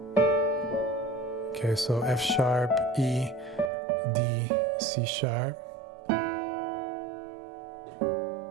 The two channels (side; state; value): left; drops out; at 3.7 s